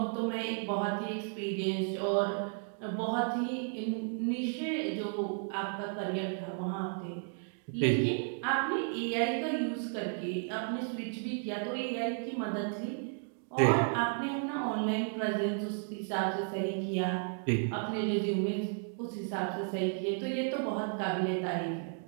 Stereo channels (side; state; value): left; silent; 55 dB below the other